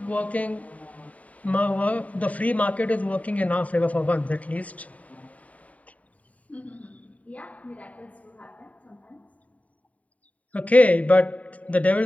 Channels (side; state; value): right; late; 0.069 ms